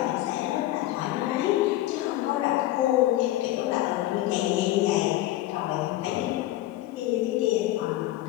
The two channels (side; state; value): right; quieter; 15.5 dB